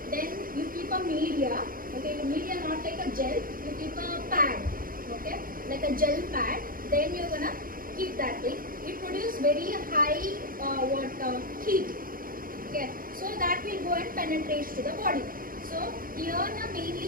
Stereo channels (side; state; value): left; late; 0.41 ms